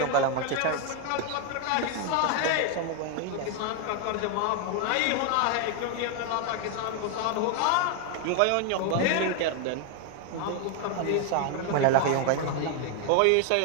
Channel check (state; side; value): different; both; correlation 0.01